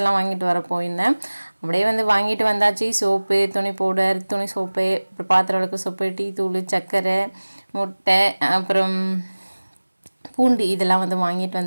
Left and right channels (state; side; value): inverted; both; correlation -1.00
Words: வாங்கிட்டு வர போயிருந்தேன். அப்படியே வந்து வாங்கிட்டு வந்தாச்சு. சோப்பு, துணி பவுடர், துணி சோப்பு, அப்புறம் பாத்திரம் விளக்கு சோப்பு, டீ தூள், சர்க்கரை, முட்டை, அப்புறம் பூண்டு இதெல்லாம் வந்து வாங்கிட்டு